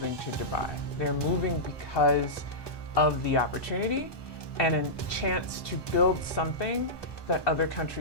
to Dubai. They're moving because of the opportunity and a chance to build something that other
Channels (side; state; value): right; late; 1.2 ms